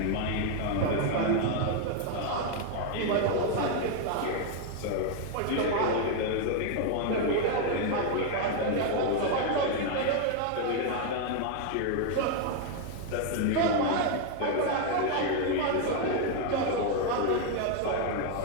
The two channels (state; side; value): different; both; correlation 0.00